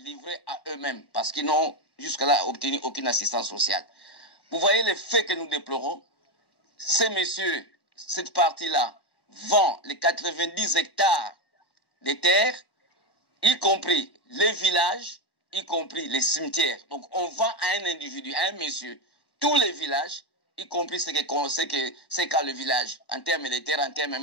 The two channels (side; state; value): right; late; 1.1 ms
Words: livrés à eux-mêmes parce qu'ils n'ont jusqu'à-là obtenu aucune assistance sociale. Vous voyez les faits que nous déplorons. Ces messieurs, cette partie-là, vendent les 90 hectares de terres, y compris les villages, y compris les cimetières. Donc on vend à un individu, à un monsieur, tous les villages y compris c'est qu'à le village, en termes de terre, en termes